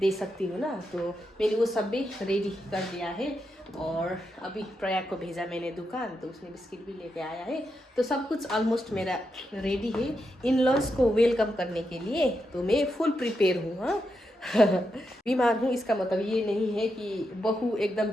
सकती हूँ ना। तो मैंने वो सब भी रेडी कर दिया है, और अभी प्रयाग को भेजा मैंने दुकान, तो उसने बिस्किट भी लेके आया है। तो सब कुछ ऑलमोस्ट मेरा रेडी है इन लॉज को वेलकम करने के लिए, तो मैं फुल प्रिपेयर हूँ। हाँ बीमार हूँ इसका मतलब ये नहीं है कि बहू एकदम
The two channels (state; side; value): normal; both; correlation 0.85